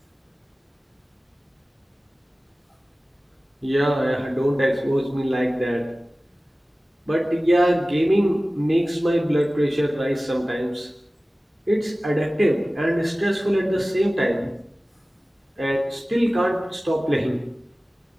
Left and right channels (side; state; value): both; normal; correlation 0.97